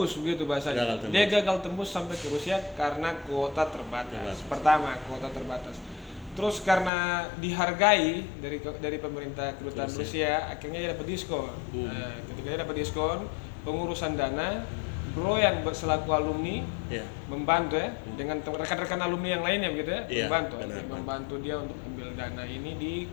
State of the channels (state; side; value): drops out; right; at 6.9 s